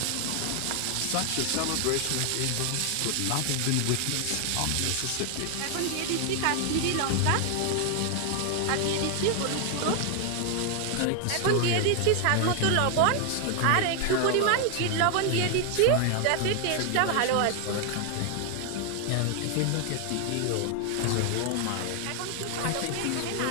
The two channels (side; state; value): both; different; correlation 0.00